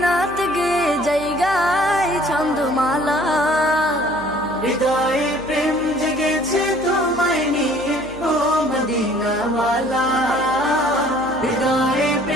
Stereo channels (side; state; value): right; noise; hum, 18 dB below the sound